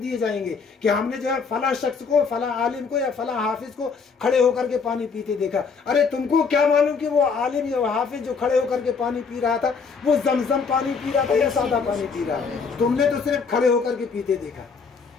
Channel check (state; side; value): quieter; right; 5.3 dB